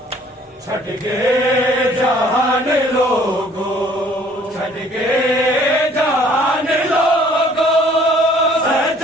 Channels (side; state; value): both; normal; correlation 0.57